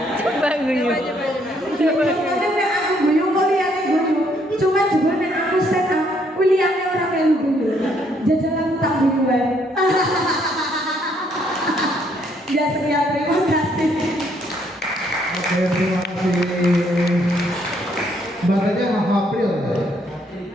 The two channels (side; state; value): both; normal; correlation 0.69